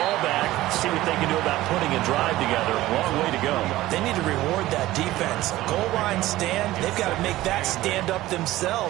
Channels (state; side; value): quieter; left; 16.4 dB